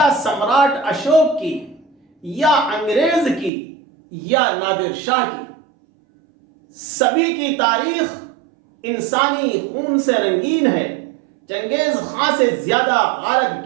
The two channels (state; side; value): drops out; left; at 3.5 s